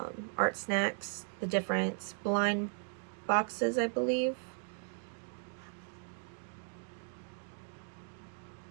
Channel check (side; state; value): left; silent; 53 dB below the other